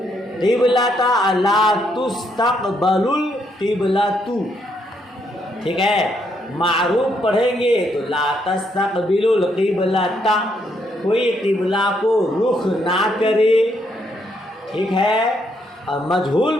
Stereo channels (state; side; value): normal; both; correlation 0.74